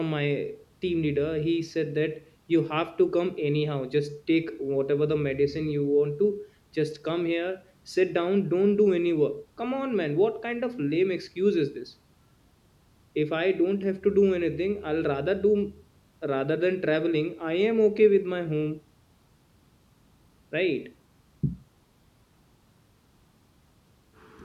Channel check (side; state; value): both; identical; correlation 1.00